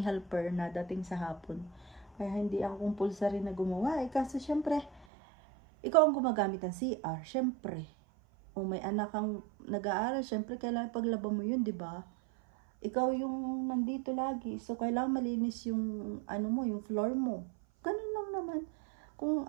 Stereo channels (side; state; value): left; drops out; at 5.1 s